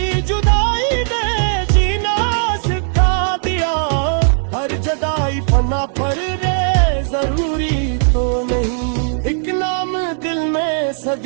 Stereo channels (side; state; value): left; silent; digital silence